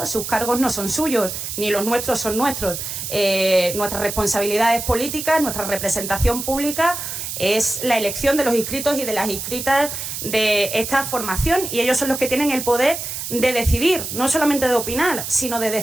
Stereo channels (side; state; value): right; noise; hiss, 6 dB below the sound